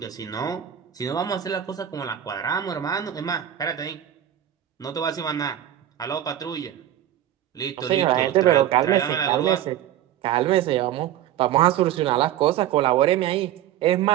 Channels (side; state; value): left; quieter; 11.6 dB